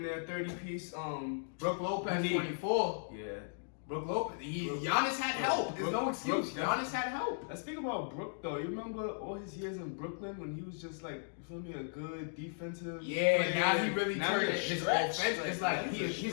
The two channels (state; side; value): silent; right; digital silence